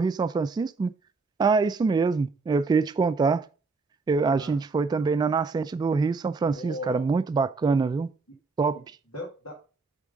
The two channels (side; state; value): left; quieter; 4.2 dB